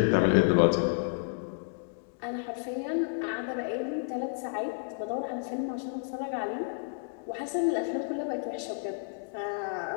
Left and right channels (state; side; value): silent; right; digital silence